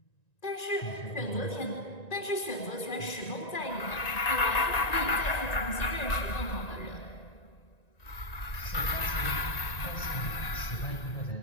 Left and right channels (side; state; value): right; late; 1.9 ms